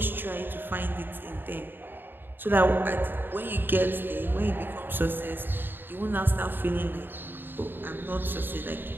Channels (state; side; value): late; left; 0.096 ms